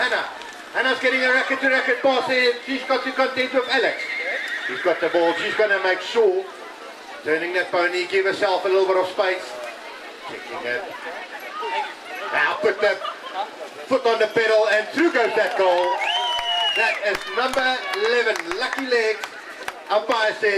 Hannah's getting a racket-to-racket pass here. She's got to contend with Alex. She's got the ball. She's going to make sure. Turning that pony, give herself a little bit of space. Checking it. Now put the foot on the pedal and through goes that goal. That is number 11, Lucky Legs. Umpire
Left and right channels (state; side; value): identical; both; correlation 1.00